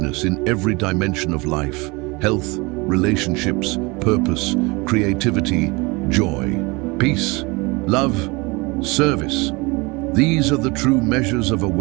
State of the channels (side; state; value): left; quieter; 25.7 dB